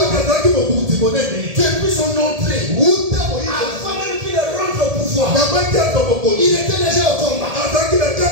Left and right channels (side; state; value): left; late; 1.7 ms